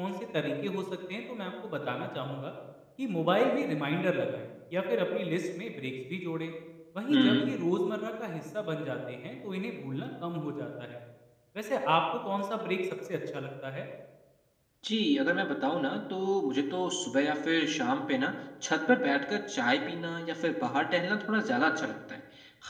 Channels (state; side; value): identical; both; correlation 1.00